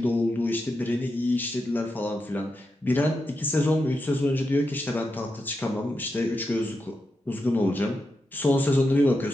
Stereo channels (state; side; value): normal; both; correlation 0.87